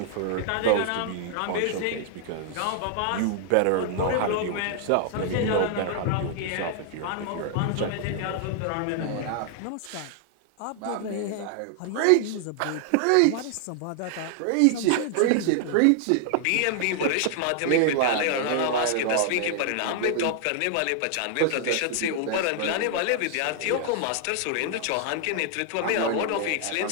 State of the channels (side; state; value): both; different; correlation 0.00